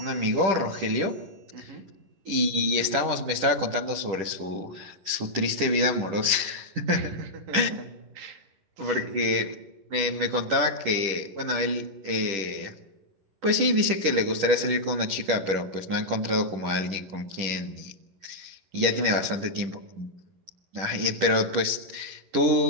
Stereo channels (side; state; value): left; late; 10 ms